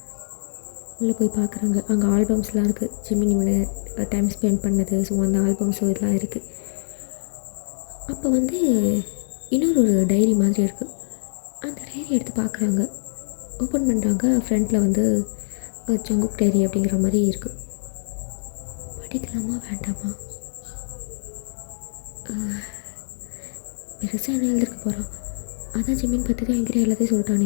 உள்ளே போய் பார்க்குறாங்க. அங்கே ஆல்பம்ஸ்லாம் இருக்குது. ஜிமின் இவனை டைம் ஸ்பெண்ட் பண்ணது. ஸோ அந்த ஆல்பம்ஸோ இதெல்லாம் இருக்குது. அப்போ வந்து இன்னொரு டைரி மாதிரி இருக்குது. அந்த டைரி எடுத்து பார்க்குறாங்க. ஓப்பன் பண்ணுறாங்க. ஃப்ரண்ட்டில் வந்து ஜங்குக் டைரி அப்படிங்கிற மாதிரி இருக்குது. படிக்கலாமா வேண்டாமா? பெருசாக என்ன எழுதிருக்க போகிறான்? அதான் ஜிமின் பற்றி தான் என்கிட்ட எல்லாத்தையும்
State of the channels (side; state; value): right; silent; digital silence